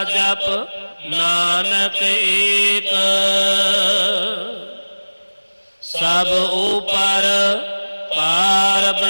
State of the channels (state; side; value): inverted; both; correlation -1.00